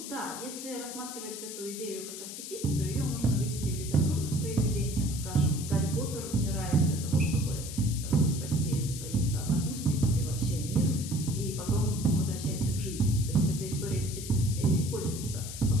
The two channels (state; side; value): noise; left; hiss, 9 dB below the sound